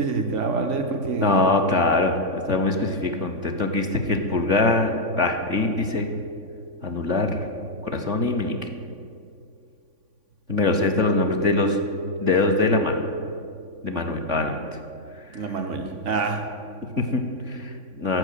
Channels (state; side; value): late; left; 3.5 ms